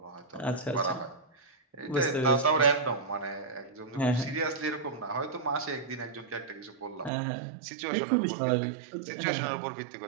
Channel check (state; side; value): drops out; left; at 7.1 s